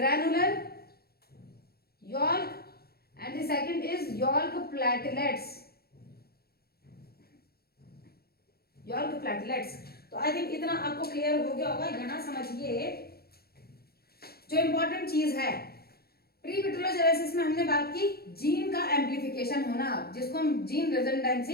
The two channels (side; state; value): right; late; 0.45 ms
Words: yolk and the second is yolk platelets, yolk platelets. तो आई थिंक इतना आपको क्लियर हो गया होगा। यहां समझिए जो इंपॉर्टेंट चीज है, प्री विटिलोजेनेसिस में हमने बात की जीन का एम्प्लीफिकेशन होना, जिसको हम जीन